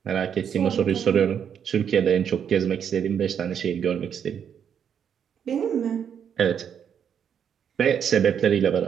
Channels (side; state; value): left; quieter; 8.1 dB